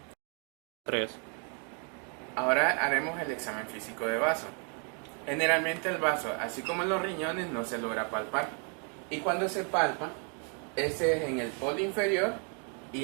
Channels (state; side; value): quieter; left; 39.1 dB